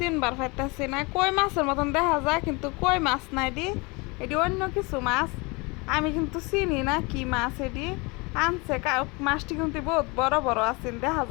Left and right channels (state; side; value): quieter; right; 27.4 dB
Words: পাইতেছি না। কই মাছের মতন দেখা যায় কিন্তু কই মাছ না এটি, এটি অন্য কিছু মাছ। আমি কিন্তু চিনি না কি মাছ এটি আনছে। মাছটি কিন্তু বহুত বড় বড় আছেন, দেখা